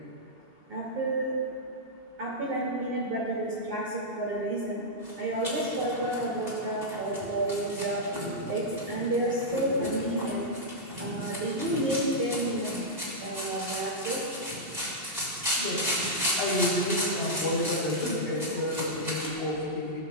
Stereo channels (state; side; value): late; left; 2.7 ms